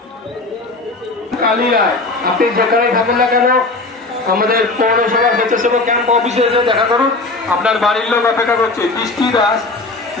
কালিয়ায় আপনি যেখানে থাকুন না কেন আমাদের পৌরসভা স্বেচ্ছাসেবক ক্যাম্প অফিসে এসে দেখা করুন। আপনার বাড়ির লোক অপেক্ষা করছে। বৃষ্টি দাস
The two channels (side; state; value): right; quieter; 3.3 dB